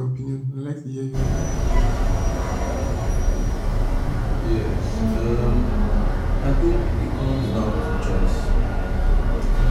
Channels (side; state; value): both; identical; correlation 1.00